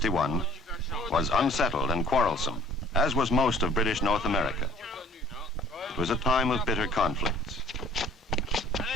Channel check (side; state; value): both; normal; correlation 0.54